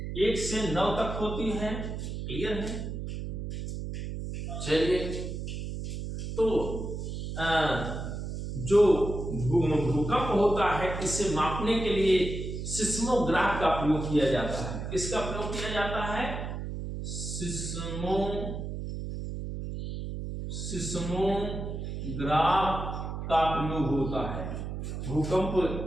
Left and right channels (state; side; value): noise; right; hum, 5 dB below the sound